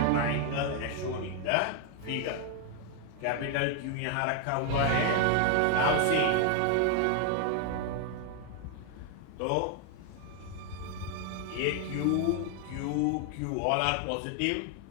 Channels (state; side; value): different; both; correlation 0.00